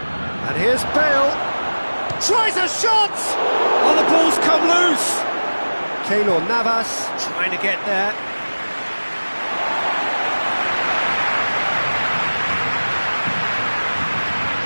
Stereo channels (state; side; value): inverted; both; correlation -1.00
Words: And here's Bale. Tries a shot! Oh, the ball's come loose! Keylor Navas trying to get there.